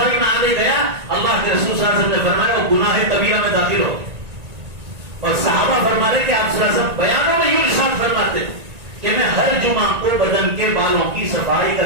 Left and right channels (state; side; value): late; left; 1.9 ms